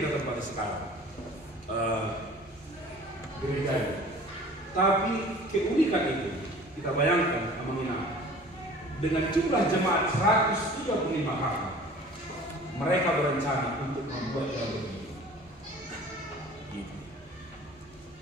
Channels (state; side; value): normal; both; correlation 0.46